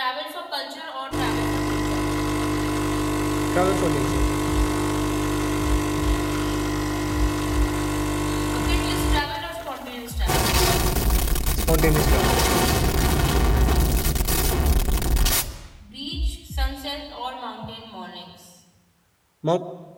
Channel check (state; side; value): identical; both; correlation 1.00